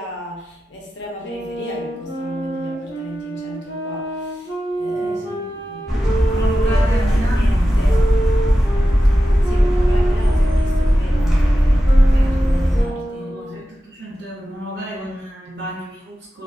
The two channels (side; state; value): both; normal; correlation 0.92